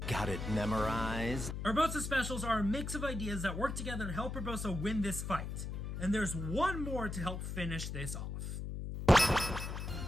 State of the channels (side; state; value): left; noise; hum, 5 dB below the sound